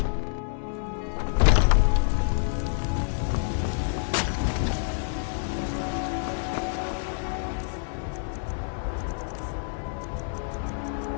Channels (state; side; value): silent; right; digital silence